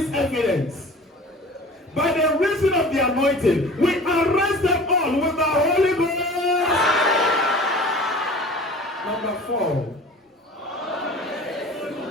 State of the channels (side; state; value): both; normal; correlation 0.42